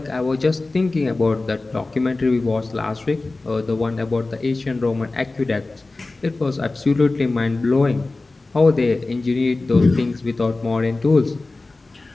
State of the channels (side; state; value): right; quieter; 3.3 dB